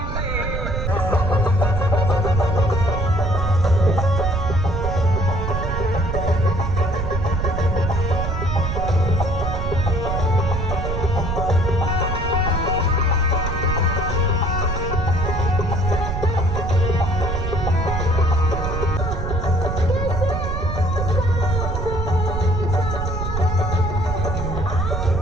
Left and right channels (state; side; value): noise; right; rumble, 2 dB below the sound